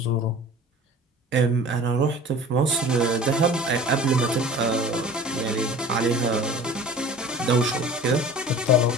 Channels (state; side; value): normal; both; correlation 0.42